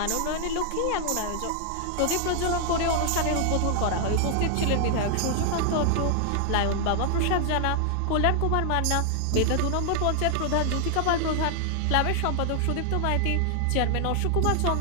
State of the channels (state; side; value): different; both; correlation 0.00